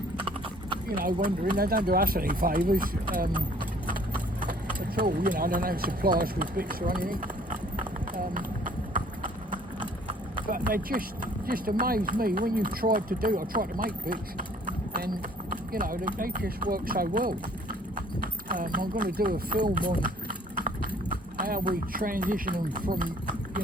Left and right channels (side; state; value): both; normal; correlation 0.57